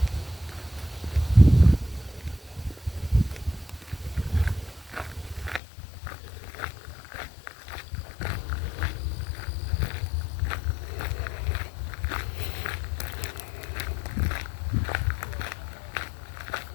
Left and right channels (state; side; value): drops out; right; at 5.6 s